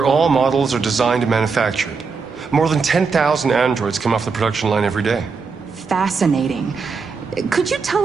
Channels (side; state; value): left; quieter; 5.0 dB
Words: all models are designed and manufactured. More than 10,000 androids come off the production line every day. Fascinating. Could you